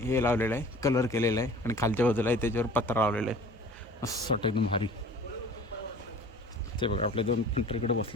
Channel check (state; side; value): normal; both; correlation 0.45